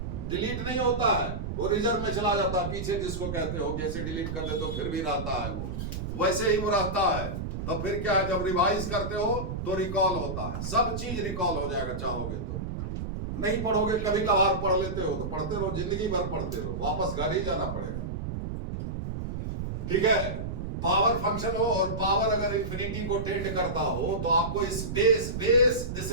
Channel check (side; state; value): right; noise; rumble, 5 dB below the sound